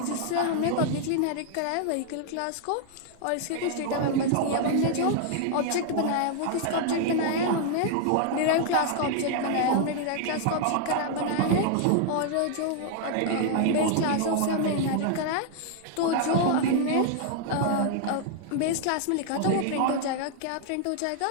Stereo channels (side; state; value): both; different; correlation 0.00